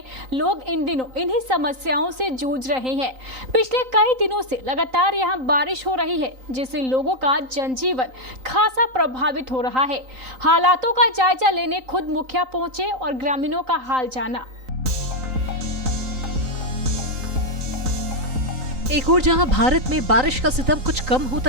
लोग इन दिनों इन्हीं समस्याओं से जूझ रहे हैं। पिछले कई दिनों से लगातार यहां बारिश हो रही है, जिससे लोगों का जनजीवन खासा प्रभावित हो रहा है। हालातों का जायजा लेने खुद मुखिया पहुंचे और ग्रामीणों का हाल जाना। एक और जहां भारत में बारिश का सितम कुछ कम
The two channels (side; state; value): left; late; 3.9 ms